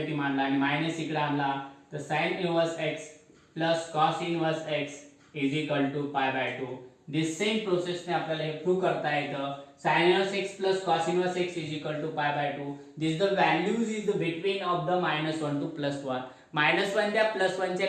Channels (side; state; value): both; identical; correlation 1.00